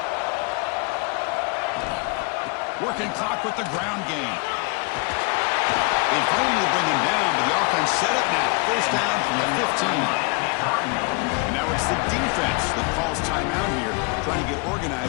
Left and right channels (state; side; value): quieter; right; 31.2 dB